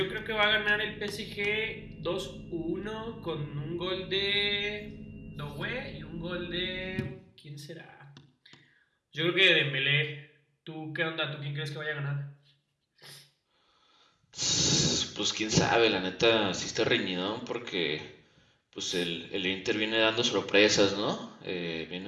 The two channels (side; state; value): both; identical; correlation 1.00